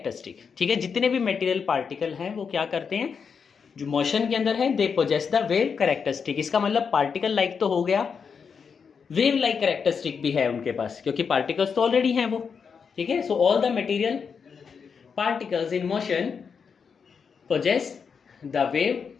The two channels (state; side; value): quieter; right; 6.1 dB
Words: ठीक है, जितने भी मटेरियल पार्टिकल हैं वो क्या करते हैं, जो मोशन के अंदर है they possess the wave characteristic. इसका मतलब पार्टिकल लाइक तो हो गया, वेव लाइक कैरेक्टरिस्टिक भी है उनके पास, क्योंकि पार्टिकल्स तो ऑलरेडी हैं वो। ठीक है, so all the material particles in motion possess the wave